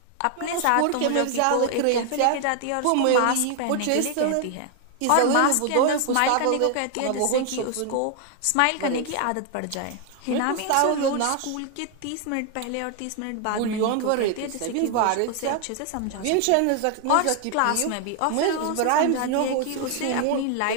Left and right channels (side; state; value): both; different; correlation 0.00